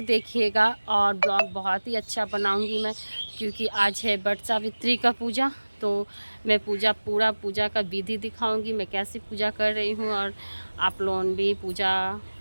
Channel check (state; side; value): inverted; both; correlation -1.00